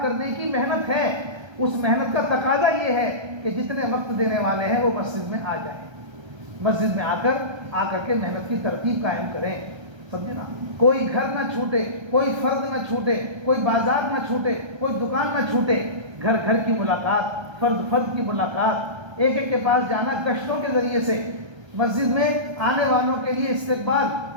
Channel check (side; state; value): left; late; 1.3 ms